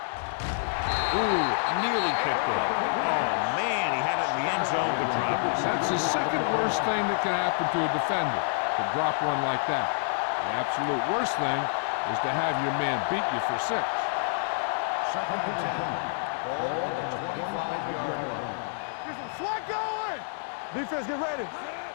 Ooh, nearly picked it. Oh, man, he had it in the end zone but dropped it. That's the second worst thing that can happen to a defender, to drop one like that. The absolute worst thing is to have your man beat you for 6. 2nd and 10. Ball on the 25-yard line. Get some slack going. Defense, get ready.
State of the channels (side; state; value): right; silent; digital silence